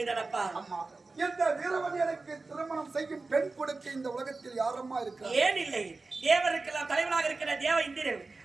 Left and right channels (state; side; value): quieter; left; 3.7 dB